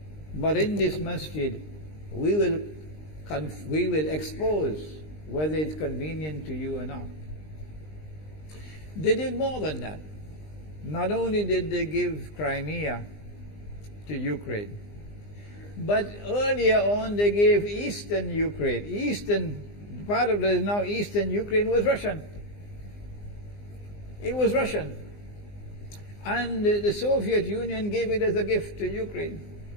But in this masjid, we will expose whether it's convenient to you or not. They did more than that. Not only did they give Crimea to Ukraine, but earlier on they gave eastern Ukraine. Eastern, part of the now eastern Ukraine was Russian. It was Russian. And the Soviet Union gave it as a gift to Ukraine.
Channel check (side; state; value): right; late; 20 ms